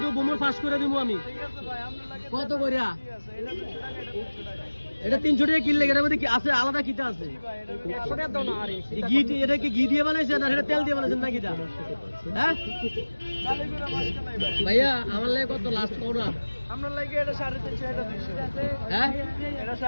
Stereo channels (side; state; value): both; inverted; correlation -1.00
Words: বোমর পাস করে দিব আমি কত করিয়া এটা 300 টাকা কিনলে এটার মধ্যে কি আছে আলাদা কিটা আছে 100 টাকা দাও না আরে ঘি এটা কি ঘি দিয়ে বানাইছেন না এটা তেল দিয়ে বানাইছেন নাকি এটা হ্যাঁ ভাইয়া আমার লাগে কত লাস্ট কও না আপনার লাগে এটা 350 এটা 200 হ্যাঁ এটা